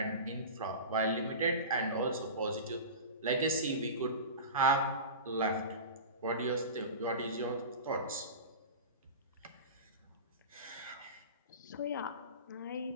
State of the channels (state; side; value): inverted; both; correlation -0.30